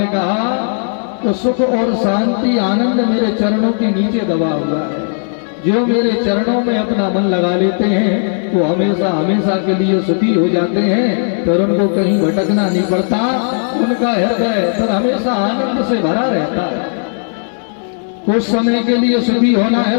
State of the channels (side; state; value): right; silent; digital silence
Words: कहा तो सुख और शांति आनंद मेरे चरणों के नीचे दबा हुआ है। जो मेरे चरणों में अपना मन लगा लेते हैं वो हमेशा हमेशा के लिए सुखी हो जाते हैं, फिर उनको कहीं भटकना नहीं पड़ता। उनका हृदय फिर हमेशा आनंद से भरा रहता है। कुछ समय के लिए सुखी होना है